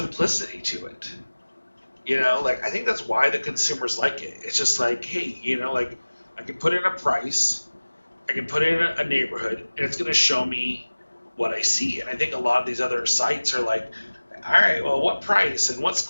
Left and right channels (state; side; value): inverted; both; correlation -1.00